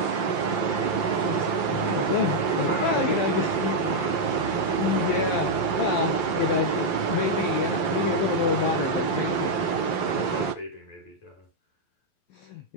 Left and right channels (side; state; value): right; late; 11 ms